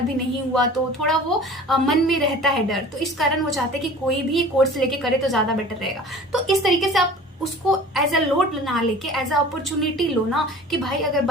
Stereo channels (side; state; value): both; normal; correlation 0.43